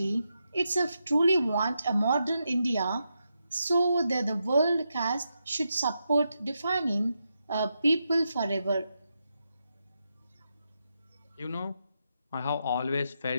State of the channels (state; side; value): inverted; both; correlation -0.85